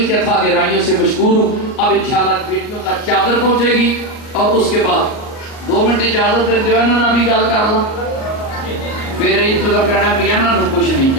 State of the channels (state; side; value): late; right; 38 ms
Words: کے تھا گہرائیوں سے مشکور ہوں. اب انشاءاللہ بیٹیوں کا چادر پہنچے گی اور اس کے بعد 2 منٹ اجازت دے جو ہے نا بھی گل کر لوں, پھر انتظار کرنا میاں نا کچھ نہیں